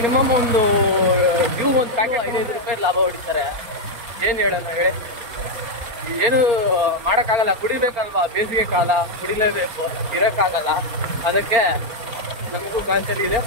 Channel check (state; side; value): late; left; 4.3 ms